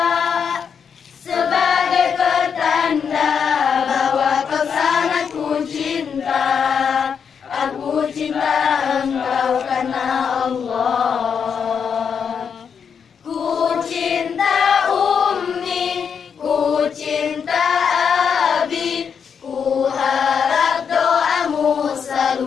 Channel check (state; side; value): quieter; right; 6.9 dB